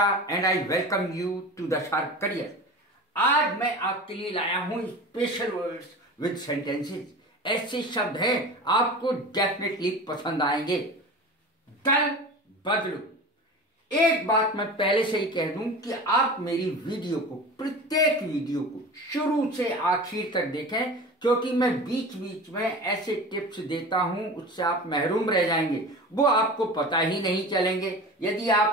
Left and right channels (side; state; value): both; normal; correlation 0.34